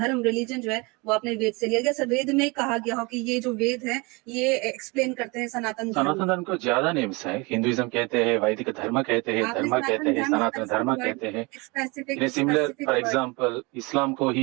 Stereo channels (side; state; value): left; quieter; 27.1 dB